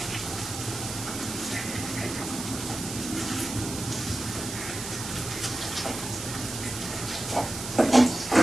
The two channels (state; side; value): noise; right; hiss, 7 dB below the sound